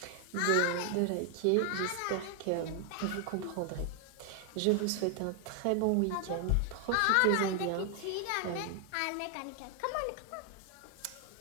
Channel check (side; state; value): both; different; correlation 0.00